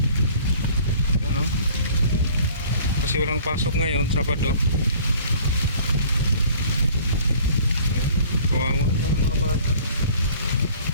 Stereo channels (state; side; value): inverted; both; correlation -0.51